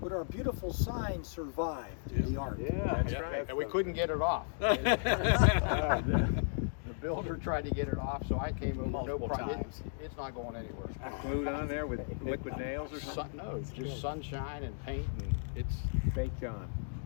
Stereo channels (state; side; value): silent; right; digital silence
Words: our beautiful sign survived the art. Yeah, that's right. And we couldn't get it off. The builder tried to get it off, so I came over. Multiple no problem. times. It's not going anywhere. Glued on there with liquid nails or something? No, just sunshine and paint, and it's Baked on.